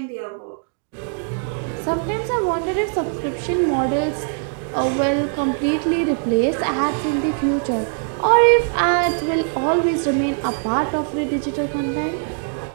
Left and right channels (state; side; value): silent; left; 55 dB below the other